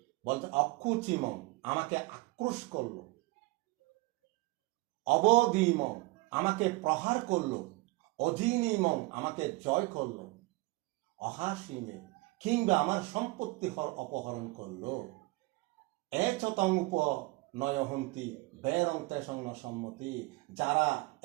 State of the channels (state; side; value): quieter; left; 22.6 dB